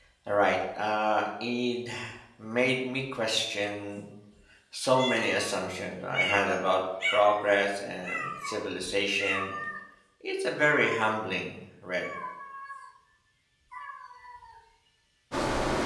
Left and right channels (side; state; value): both; identical; correlation 1.00